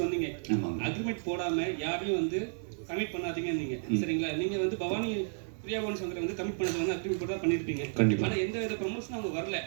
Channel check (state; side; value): silent; left; 56 dB below the other